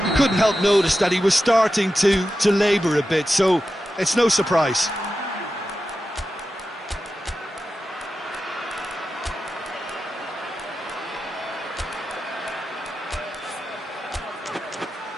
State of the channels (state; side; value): normal; both; correlation 0.91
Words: you couldn't help notice that he was starting to labour a bit, so it's no surprise.